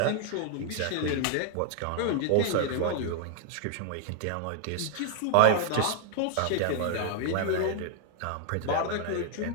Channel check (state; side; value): different; both; correlation -0.01